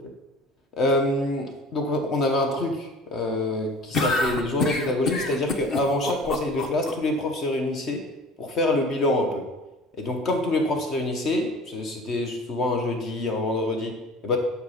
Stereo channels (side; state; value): both; normal; correlation 0.43